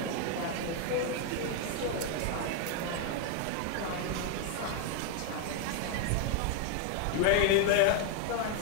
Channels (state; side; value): different; both; correlation 0.01